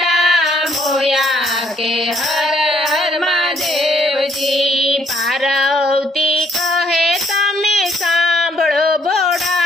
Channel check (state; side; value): normal; both; correlation 0.67